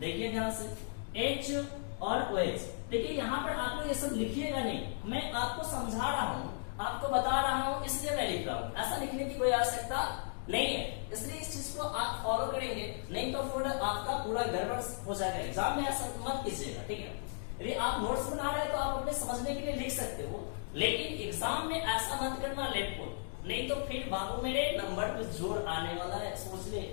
ध्यान से, H और OH। देखिए यहां पर आप लोग ये सब लिखिएगा नहीं, मैं आपको समझा रहा हूं, आपको बता रहा हूं, इसलिए मैं लिख रहा हूं। ऐसा लिखने की कोई आवश्यकता नहीं है, इसलिए इस चीज को आप फॉलो करेंगे, नहीं तो फिर आपका पूरा गड़बड़ हो जाएगा। एग्जाम में ऐसा मत कीजिएगा, ठीक है। यदि आप नोट्स बना रहे हैं तो आप अपने समझने के लिए लिख सकते हो, लेकिन एग्जाम में ऐसा मत करना लेफ्ट को, नहीं तो फिर बाबू मेरे नंबर पे जोर आने वाला है, सोच ले।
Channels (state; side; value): silent; right; digital silence